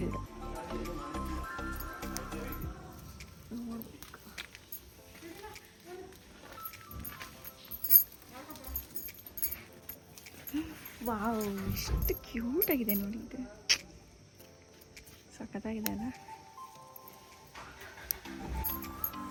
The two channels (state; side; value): identical; both; correlation 1.00